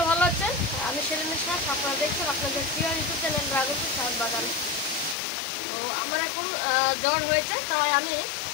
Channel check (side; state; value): right; drops out; at 5.2 s